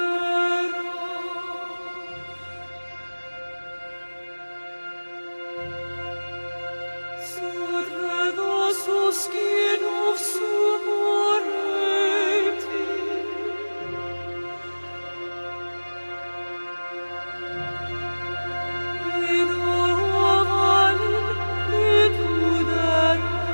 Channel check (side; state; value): both; inverted; correlation -1.00